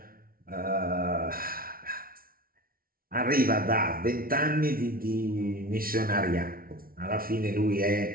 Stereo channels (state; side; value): late; left; 0.43 ms